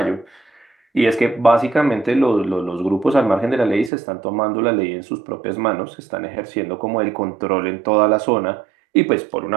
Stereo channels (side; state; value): left; drops out; at 3.9 s